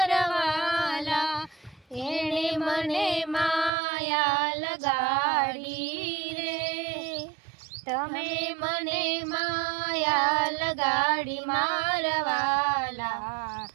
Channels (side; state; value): left; drops out; at 3.7 s